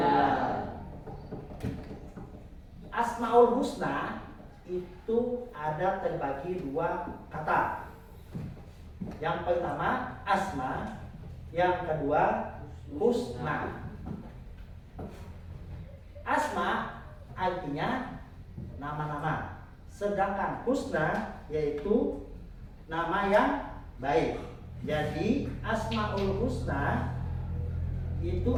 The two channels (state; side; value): identical; both; correlation 1.00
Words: Asmaul Husna itu ada terbagi dua kata. Yang pertama asma, yang kedua husna. Asma artinya nama-nama, sedangkan husna yaitu nama yang baik. Jadi Asmaul Husna itu